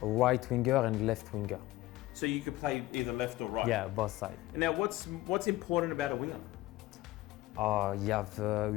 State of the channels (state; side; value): quieter; right; 17.7 dB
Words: A right winger and left winger. So you could play either left or right? Yeah, both sides. And now what's important about a winger? You